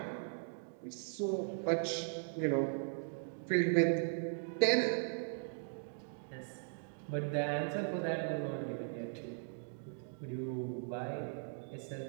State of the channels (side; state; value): left; silent; digital silence